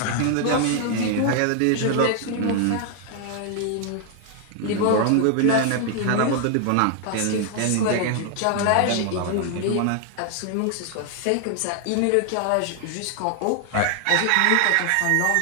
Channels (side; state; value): both; different; correlation 0.00